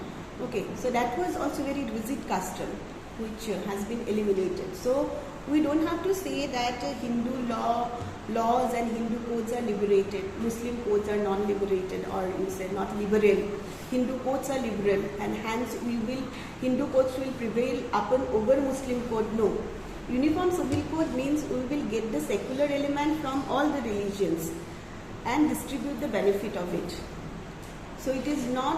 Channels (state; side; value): identical; both; correlation 1.00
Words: Okay, so that was also very rigid custom, which has been eliminated. So we don't have to say that Hindu laws and Hindu codes are liberated, Muslim codes are non-liberated, or you say not liberal. Hindu codes are liberal, and hence Hindu codes will prevail over Muslim code. No. Uniform civil code means we will get the secular element from all the religions and distribute the benefit of it. So it is